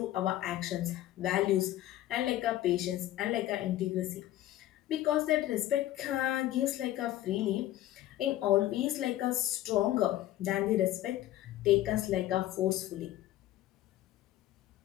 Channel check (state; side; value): quieter; right; 14.1 dB